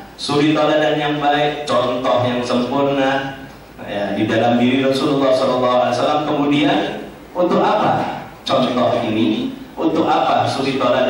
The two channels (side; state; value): both; identical; correlation 1.00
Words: suri tauladan yang baik, contoh yang sempurna ya, di dalam diri Rasulullah SAW. Kemudian untuk apa contoh ini? Untuk apa suri